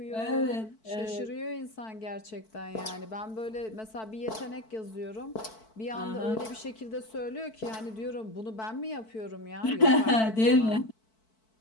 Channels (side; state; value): right; late; 4.5 ms